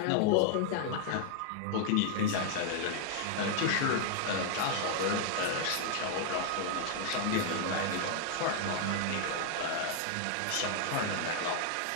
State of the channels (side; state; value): both; different; correlation 0.00